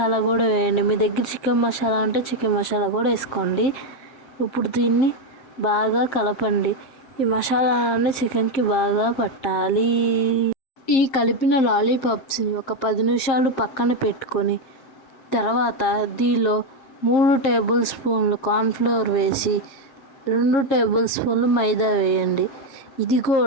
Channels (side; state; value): right; late; 7.5 ms